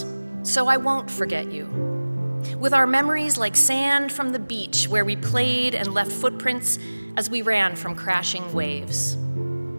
so I won't forget you, with our memories like sand from the beach where we played and left footprints as we ran from crashing waves.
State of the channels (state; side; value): inverted; both; correlation -1.00